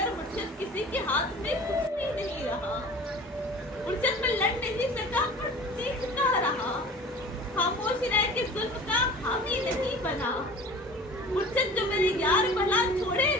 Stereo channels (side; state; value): both; normal; correlation 0.41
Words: मुर्शिद किसी के हाथ में कुछ भी नहीं रहा। मुर्शिद में लड़ नहीं सका पर चीखता रहा। खामोश रह के जुल्म का हामी नहीं बना। मुर्शिद जो मेरे यार भला छोड़े